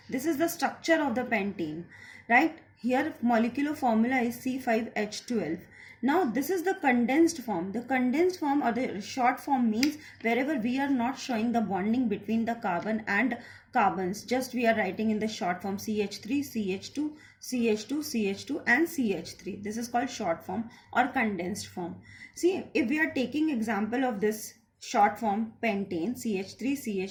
This is the structure of the pentane, right? Here molecular formula is C5H12. Now this is the condensed form. The condensed form or the short form means wherever we are not showing the bonding between the carbon and carbons, just we are writing in the short form CH3, CH2, CH2, CH2 and CH3. This is called short form or condensed form. See, if we are taking example of this short form pentane, CH3,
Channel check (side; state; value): both; identical; correlation 1.00